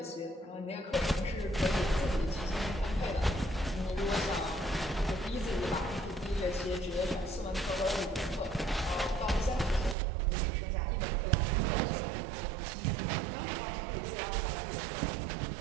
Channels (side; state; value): left; drops out; at 10.0 s